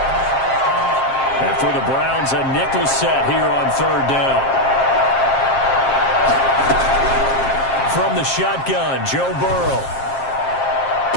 And for the Browns, a nickel set here on 3rd down. From the shotgun, Joe Burrow.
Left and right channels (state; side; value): late; right; 7.5 ms